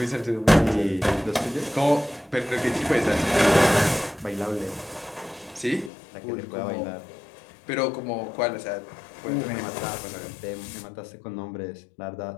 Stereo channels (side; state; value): right; drops out; at 5.9 s